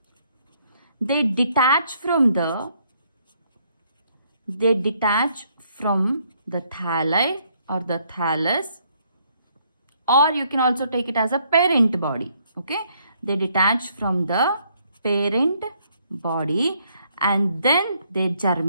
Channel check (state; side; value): inverted; both; correlation -0.69